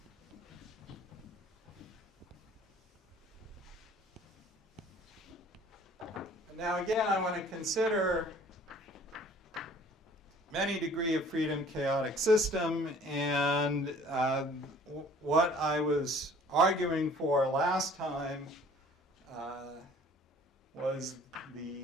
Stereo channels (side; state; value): both; normal; correlation 0.52